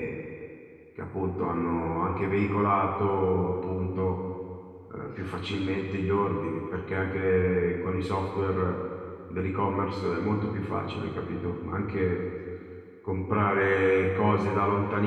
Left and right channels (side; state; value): both; identical; correlation 1.00